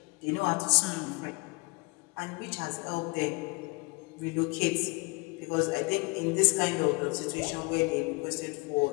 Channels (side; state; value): right; quieter; 28.9 dB